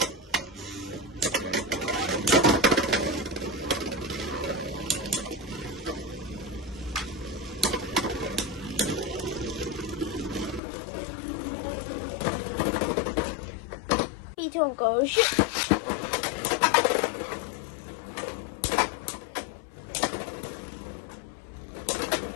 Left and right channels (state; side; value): drops out; right; at 10.6 s